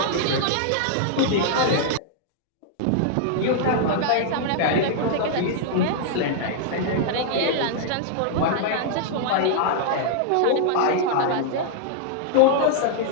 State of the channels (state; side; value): different; both; correlation -0.01